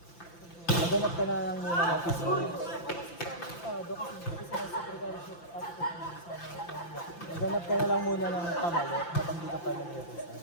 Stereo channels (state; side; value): late; right; 5.9 ms